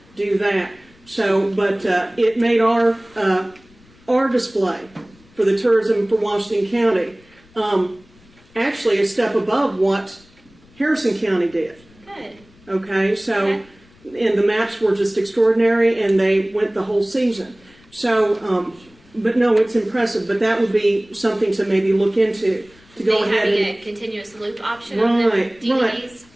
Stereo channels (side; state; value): left; noise; rumble, 28 dB below the sound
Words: do that. So, but it made our display for the tourism for Washington County actually a step above what Harrison County did. Good. Okay, so, Okay. and the maps were just extraordinary, and they went the whole season. So, but no, it's impressive, but that would be something to maybe look into, to go ahead having and... a continuous loop option on the Right, DVDs.